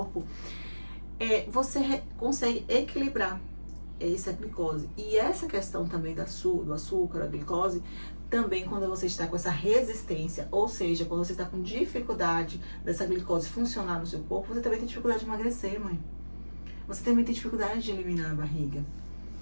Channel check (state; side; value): inverted; both; correlation -1.00